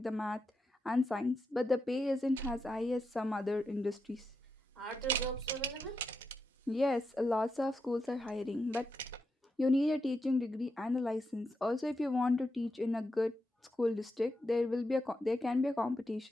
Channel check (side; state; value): both; normal; correlation 0.86